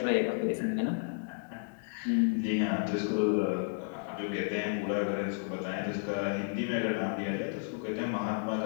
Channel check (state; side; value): silent; right; digital silence